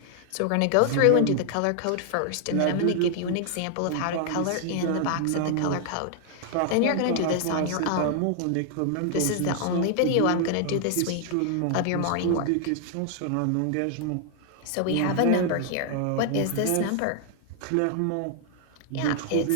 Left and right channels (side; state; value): both; different; correlation 0.00